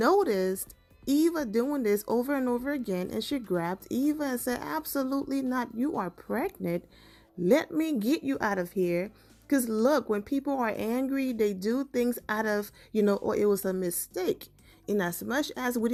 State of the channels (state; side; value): identical; both; correlation 1.00